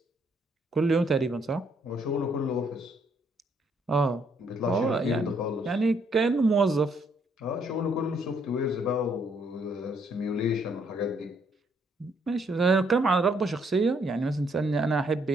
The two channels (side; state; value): both; normal; correlation 0.70